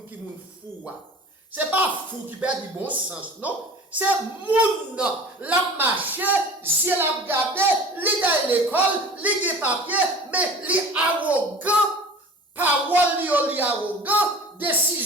qui moun fou. C'est pas fou qui perd du bon sens, non? C'est moun la marché, j'ai la regardé, li à l'école, li des papiers, mais li arrogant, parole li arrogant,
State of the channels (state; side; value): normal; both; correlation 0.41